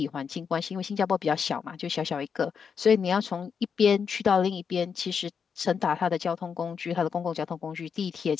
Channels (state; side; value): quieter; right; 6.5 dB